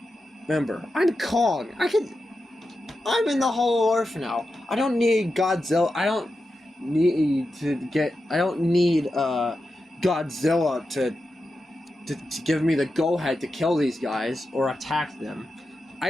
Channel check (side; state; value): both; normal; correlation 0.90